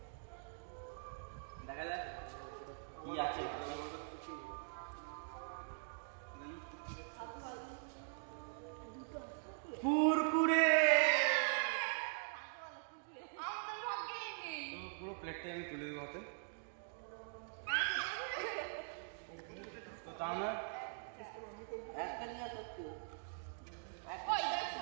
দেখা যাক কি আছে। কুরকুরে। তো পুরো প্লেটটাই আমি তুলে দেবো হাতে। তো তা নয়,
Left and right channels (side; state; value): left; silent; digital silence